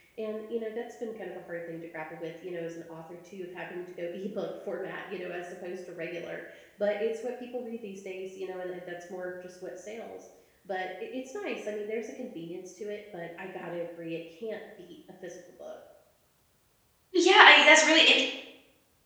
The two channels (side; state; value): both; identical; correlation 1.00